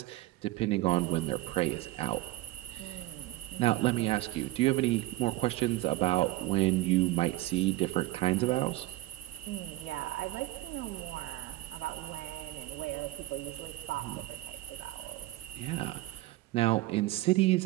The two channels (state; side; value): quieter; left; 17.6 dB